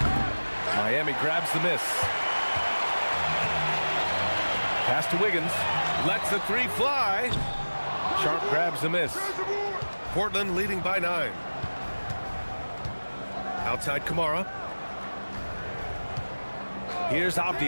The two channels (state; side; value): inverted; both; correlation -1.00